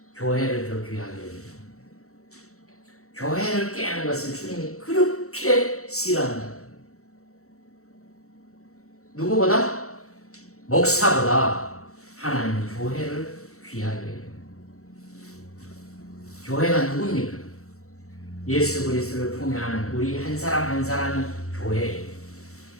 교회를 더 귀하게 여깁니다. 교회를 깨는 것을 주님이 그렇게 싫어한다. 누구보다? 목사보다 하나님은 교회를 귀하게 여깁니다. 교회가 누굽니까? 예수 그리스도를 품에 안은 우리 한 사람 한 사람이 교회예요.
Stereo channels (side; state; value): right; late; 0.64 ms